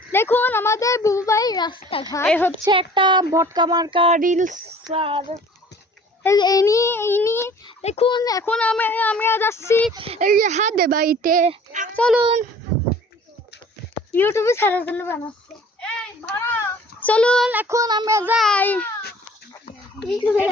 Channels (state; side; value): normal; both; correlation 0.49